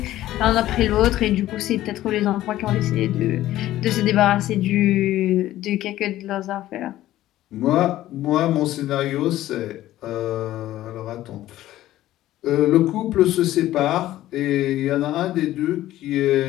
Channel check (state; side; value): quieter; right; 14.4 dB